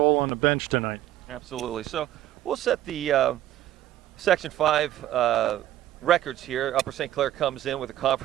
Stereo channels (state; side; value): quieter; left; 13.4 dB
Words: on the bench tonight. Absolutely. So we'll set the Section 5 records here. Upper St. Clair comes in with a